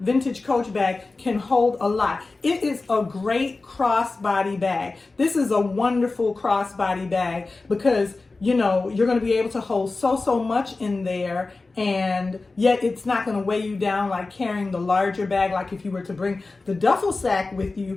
Coach bag can hold a lot. It is a great crossbody bag. This is a wonderful crossbody bag because you're going to be able to hold so much in there, and yet it's not going to weigh you down like carrying the larger bag. Like if you were to bring the duffel sack with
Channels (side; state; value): right; quieter; 3.6 dB